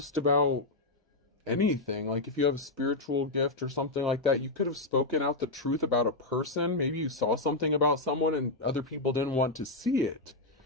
about anything. Like, if you have a spiritual gift or something like that, you could have spoken out the truth about a person. Maybe you saw something about someone and other people didn't want to see it.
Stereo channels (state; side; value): quieter; right; 3.0 dB